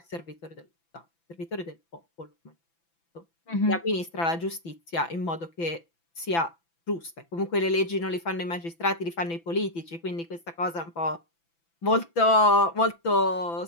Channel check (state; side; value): late; right; 6.0 ms